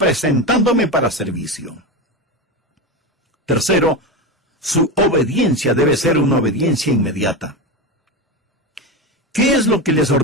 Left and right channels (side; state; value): both; normal; correlation 0.18